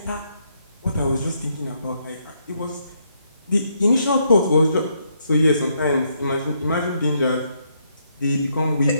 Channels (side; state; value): both; inverted; correlation -0.75